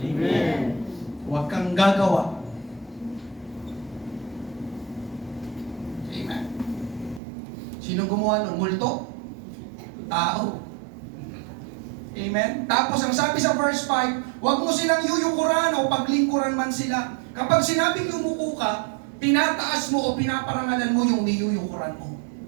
Huwag kang gagawa. Amen. Sino gumawa ng multo? Tao. Amen? Tapos ang sabi sa verse 5, huwag mo silang yuyukuran o paglingkuran man sila. Kapag sinabing yumuko ka, tinataas mo o pinaparangalan mo yung niyuyukuran mo.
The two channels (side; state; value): left; drops out; at 7.2 s